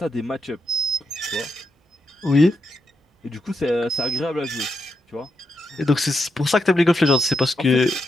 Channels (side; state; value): both; normal; correlation 0.83